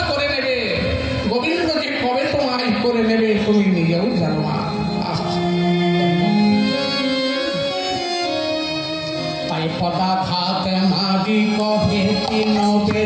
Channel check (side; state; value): both; identical; correlation 1.00